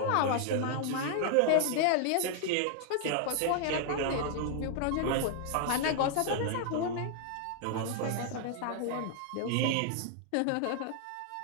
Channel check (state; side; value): different; both; correlation 0.00